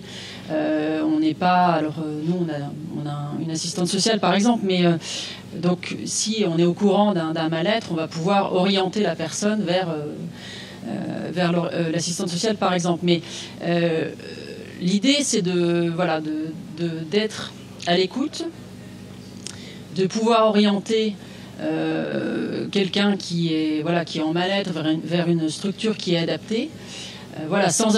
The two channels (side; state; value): both; identical; correlation 1.00